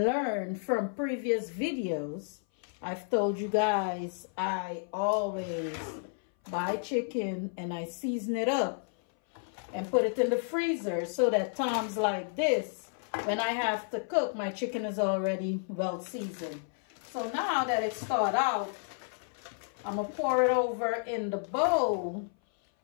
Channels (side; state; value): right; silent; 57 dB below the other